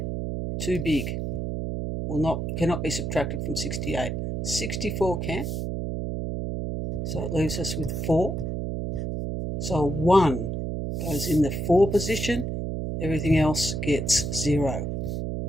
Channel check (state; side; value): noise; right; hum, 2 dB below the sound